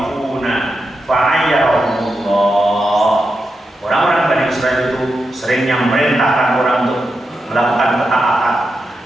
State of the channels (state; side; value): normal; both; correlation 0.87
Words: fa'ayyahumullah. Orang-orang Bani Israel itu seringnya memerintahkan orang untuk melakukan ketaatan,